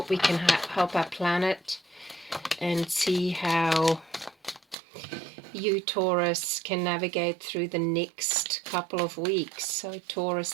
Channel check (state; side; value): drops out; left; at 4.8 s